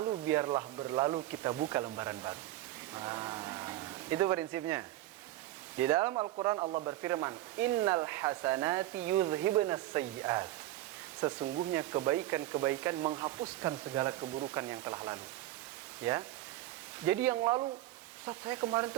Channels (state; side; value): quieter; left; 15.3 dB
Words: biarlah berlalu, kita buka lembaran baru. Itu prinsipnya. Di dalam Al-Quran Allah berfirman, Innal hasanati yudhhibunas sayyi'at. Sesungguhnya kebaikan-kebaikan menghapuskan segala keburukan yang telah lalu. Ya. Jadi yang lalu, Ustaz, saya kemarin